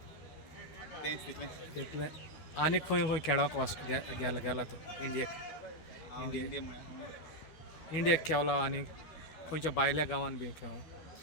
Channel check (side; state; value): right; late; 12 ms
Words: तेंच तितलें आनी खंय खंय खेळोंक गेला तो इंडियेक हांव इंडिया म्हळ्यार इंडियेक खेळला आनी खंयच्या भायल्या गांवांत बी खेळो